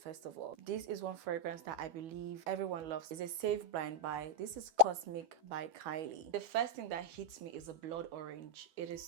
of all, this is one fragrance that I believe everyone loves. It's a safe blind buy. This is Cosmic by Kylie. The first thing that hits me is a blood orange. It is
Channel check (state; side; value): late; left; 12 ms